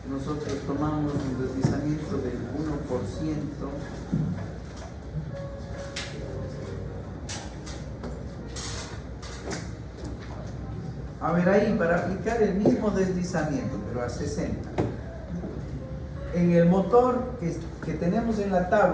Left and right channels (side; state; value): both; identical; correlation 1.00